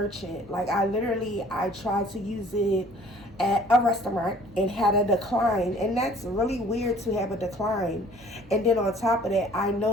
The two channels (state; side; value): normal; both; correlation 0.53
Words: Like I tried to use it at a restaurant and had a decline, and that's really weird to have a decline. And then on top of that, I